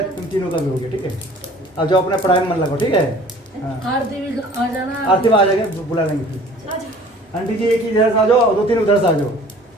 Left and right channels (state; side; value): normal; both; correlation 0.49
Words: तुम तीनों का भी हो गया, ठीक है। अब जो अपने पढ़ाई में मन लगो, ठीक है। हाँ। आरती भी आ जाना। आरती में आ जाएंगे, बुला लेंगे फिर। आंटी जी एक ही इधर से आ जाओ, 2-3 उधर से आ जाओ।